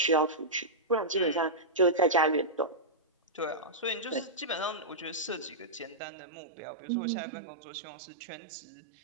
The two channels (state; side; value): drops out; left; at 6.0 s